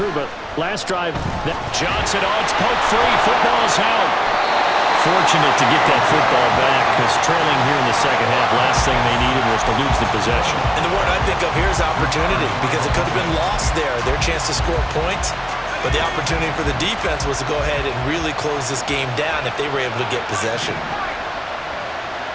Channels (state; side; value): identical; both; correlation 1.00